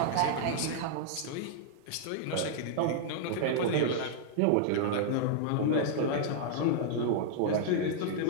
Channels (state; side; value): different; both; correlation -0.01